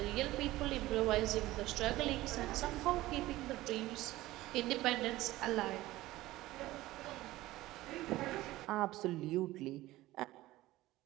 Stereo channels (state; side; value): quieter; left; 17.2 dB